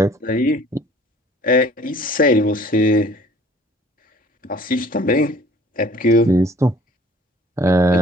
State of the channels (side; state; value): both; normal; correlation 0.52